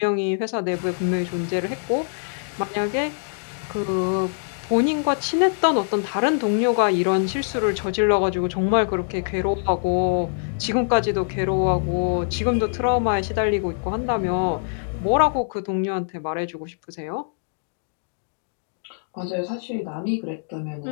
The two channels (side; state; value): right; silent; digital silence